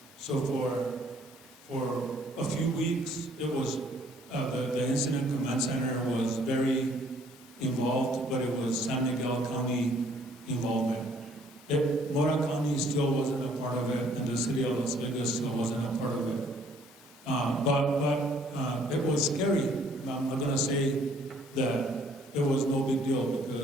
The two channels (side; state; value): both; normal; correlation 0.61